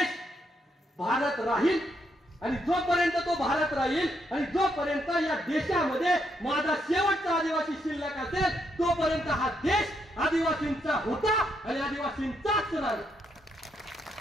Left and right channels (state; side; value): normal; both; correlation 0.77